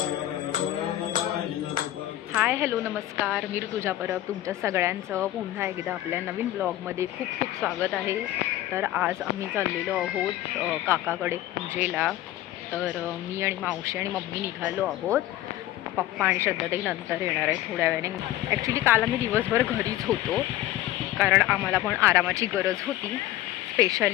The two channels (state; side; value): quieter; right; 14.5 dB